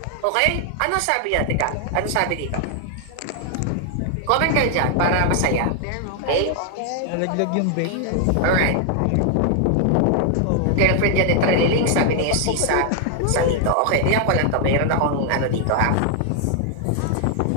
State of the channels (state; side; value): different; both; correlation 0.00